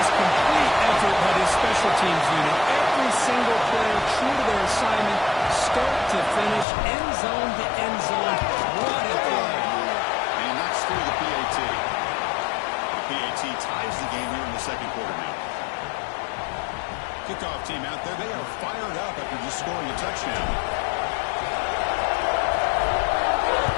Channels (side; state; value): right; drops out; at 6.7 s